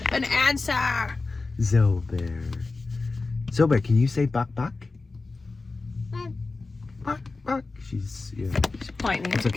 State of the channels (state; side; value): quieter; right; 3.7 dB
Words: an answer. Zobear, can you say Buck? Buck. She's pointing. It's